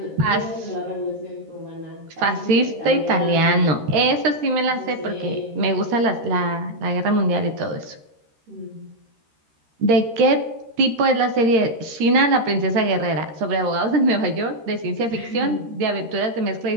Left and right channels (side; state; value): left; late; 13 ms